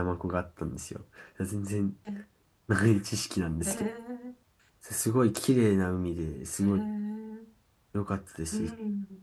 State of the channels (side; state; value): both; identical; correlation 1.00